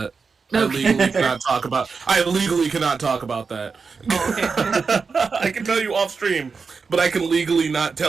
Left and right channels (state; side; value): quieter; left; 5.0 dB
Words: Okay. I legally cannot talk about that. Oh, okay. I can tell you off stream, but I can legally not